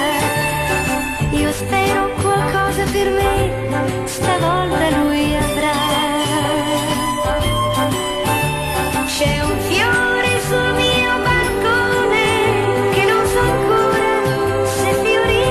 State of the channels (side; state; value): both; identical; correlation 1.00